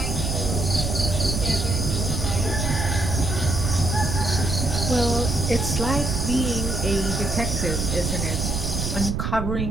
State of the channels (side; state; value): right; noise; rumble, 2 dB below the sound